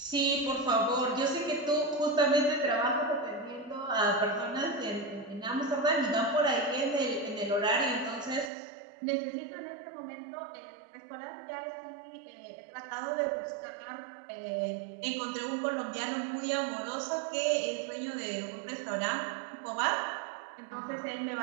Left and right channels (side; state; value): left; drops out; at 8.5 s